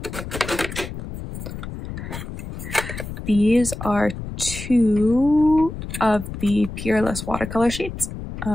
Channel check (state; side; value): noise; left; rumble, 9 dB below the sound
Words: These are 2 of the Peerless watercolor sheets